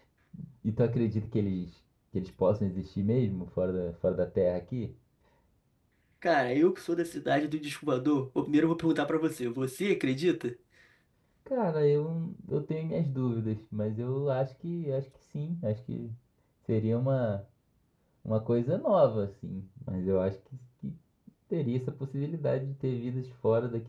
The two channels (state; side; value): identical; both; correlation 1.00